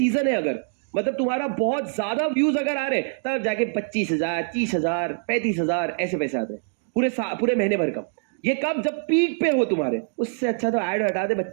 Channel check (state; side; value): silent; left; digital silence